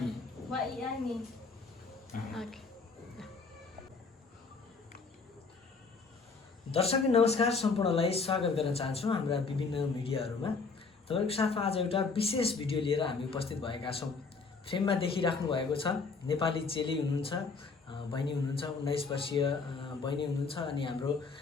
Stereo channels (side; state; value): right; quieter; 4.5 dB